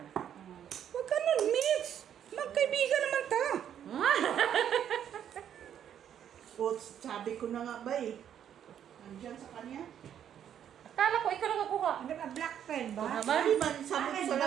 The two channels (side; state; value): left; quieter; 9.5 dB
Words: Huwag ka nun, Mitch. Magkaibigan naman ta. oh, sabi ko na nga ba eh. Nandiyan sa kanya. Akala ko ikaw nakakuha. Ano ba, black pen ba? Tama. Hindi man, sabi ko sa